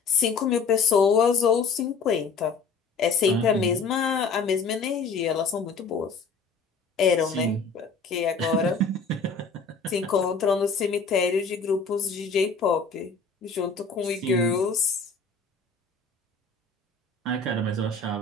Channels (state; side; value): quieter; right; 4.6 dB